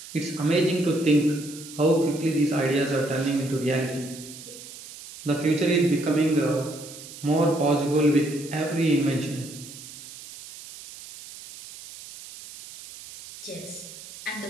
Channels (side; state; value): right; noise; hiss, 15 dB below the sound